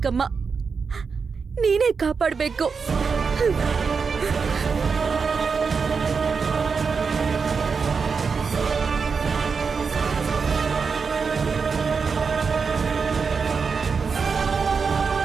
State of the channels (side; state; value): left; quieter; 5.4 dB